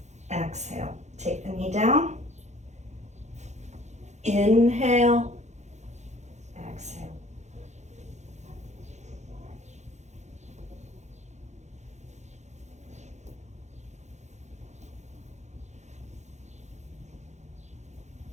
exhale. Take the knee down, inhale, exhale.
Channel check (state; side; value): late; left; 0.33 ms